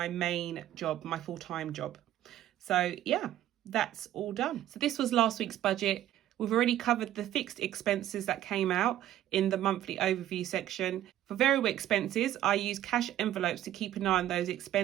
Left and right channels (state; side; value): quieter; left; 12.6 dB